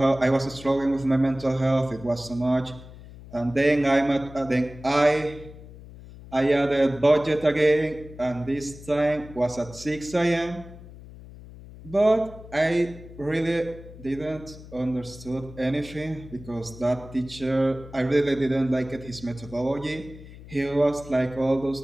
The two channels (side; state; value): left; noise; hum, 17 dB below the sound